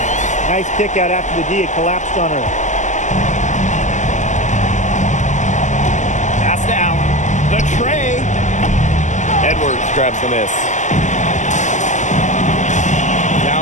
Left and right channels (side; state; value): right; late; 0.35 ms